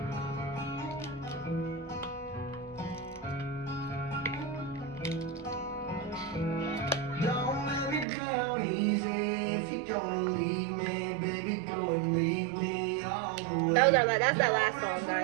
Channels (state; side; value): drops out; left; at 8.1 s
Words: Don't let me down easy. If you're gonna leave me, baby, go and leave me all the way. That's that last song,